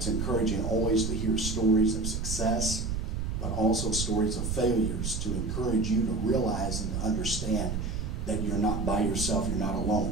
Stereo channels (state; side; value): noise; right; rumble, 3 dB below the sound